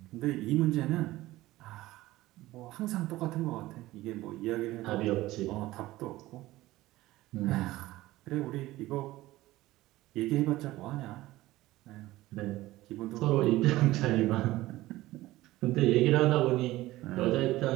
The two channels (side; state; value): left; quieter; 17.3 dB